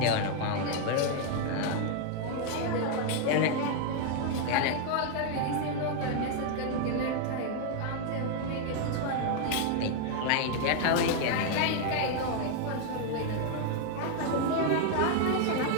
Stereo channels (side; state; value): both; different; correlation 0.00